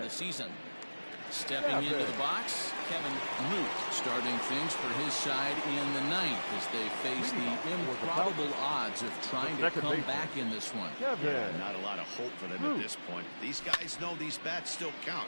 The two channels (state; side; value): inverted; both; correlation -1.00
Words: the season. Stepping into the box, Kevin Root starting things for his side in the 9th as they face the improbable odds of trying to come back in this one. Yeah, not a lot of hope for them at this point. These guys know these bats still